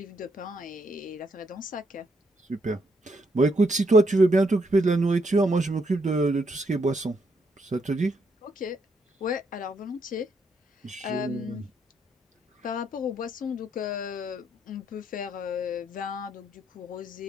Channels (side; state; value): both; normal; correlation 0.75